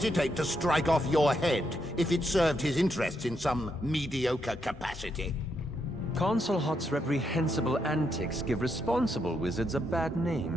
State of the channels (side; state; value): both; normal; correlation 0.79